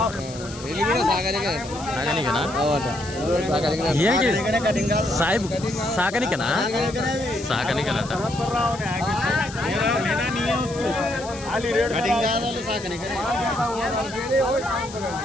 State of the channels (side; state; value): left; noise; hiss, 15 dB below the sound